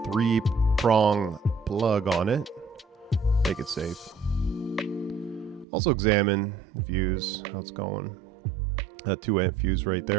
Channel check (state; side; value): drops out; left; at 5.7 s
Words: plug on it. Make it safe. Also examine the fuse, how it's going. That 2-amp fuse right